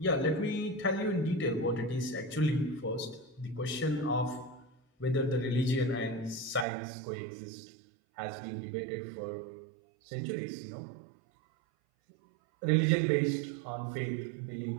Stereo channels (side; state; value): left; drops out; at 6.7 s